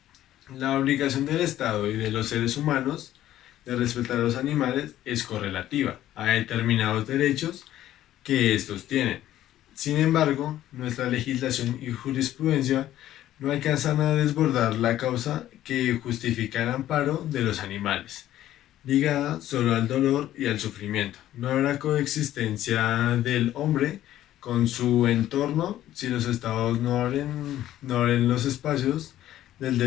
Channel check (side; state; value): right; quieter; 13.0 dB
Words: La obligación del Estado y de los seres humanos de respetar a los animales es correlativa a determinados derechos que estos tienen. Sin embargo, nuestra legislación y jurisprudencia no alcanzan a desbordar la causa que justifica el amparo de los animales, ligada solo al dolor y al sufrimiento. No habrá coexistencia del hombre con su entorno si los estados no abren los espacios del